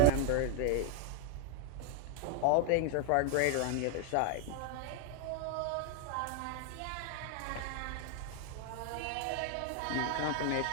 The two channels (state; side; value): different; both; correlation 0.00